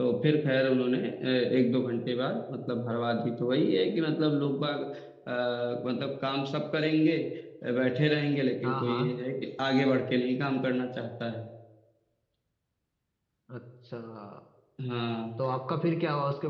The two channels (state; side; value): identical; both; correlation 1.00